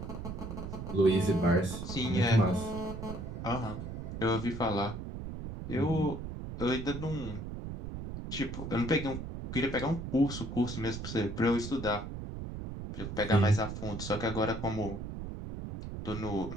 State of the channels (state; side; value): noise; right; rumble, 7 dB below the sound